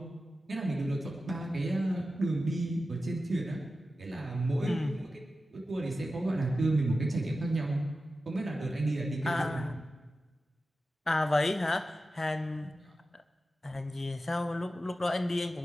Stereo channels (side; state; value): both; normal; correlation 0.93